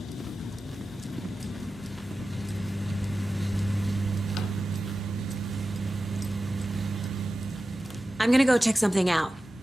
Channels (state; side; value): normal; both; correlation 0.94